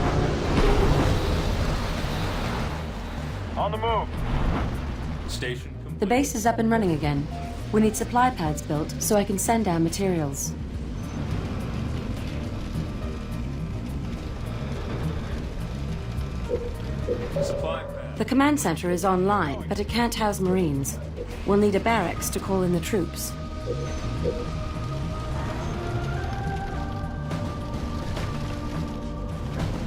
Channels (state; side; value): identical; both; correlation 1.00